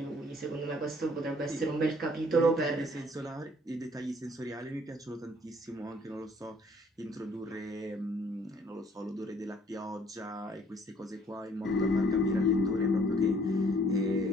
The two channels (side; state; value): both; normal; correlation 0.60